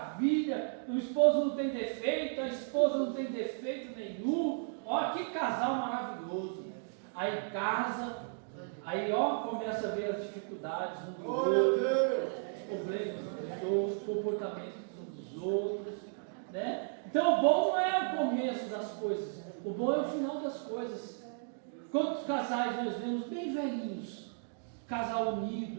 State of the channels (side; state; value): left; silent; digital silence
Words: o esposo não tem defeito, a esposa não tem defeito nenhum, ó, que casal maravilhoso. Aí casa, aí ó, começa a ver as dificuldades um do outro, os problemas dos outros, os comportamentos dos outros, né? Então o bom não é o começo das coisas, o bom é o final das coisas. Quantos casais nós vemos bem velhinhos, casal